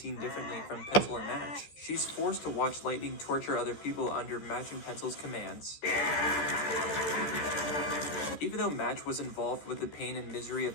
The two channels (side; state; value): right; late; 14 ms